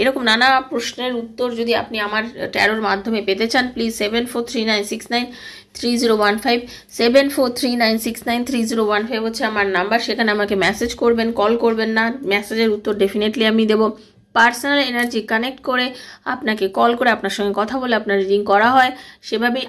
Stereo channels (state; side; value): identical; both; correlation 1.00